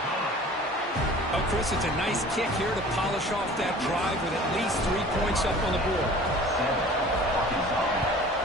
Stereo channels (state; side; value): normal; both; correlation 0.45